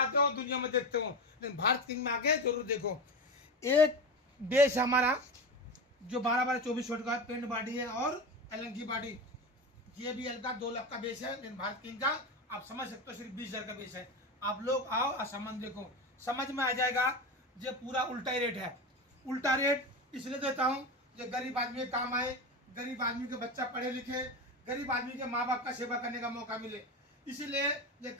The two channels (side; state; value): both; normal; correlation 0.22